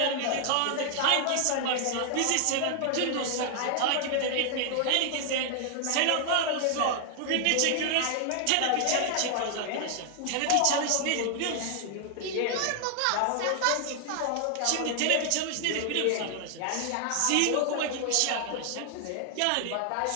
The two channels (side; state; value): both; different; correlation 0.00